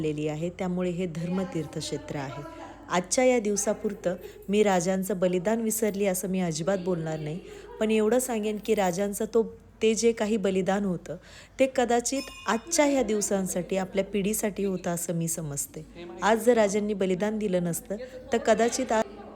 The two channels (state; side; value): identical; both; correlation 1.00